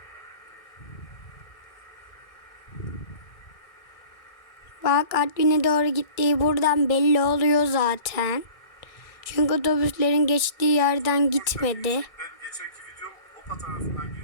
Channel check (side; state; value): right; late; 1.6 ms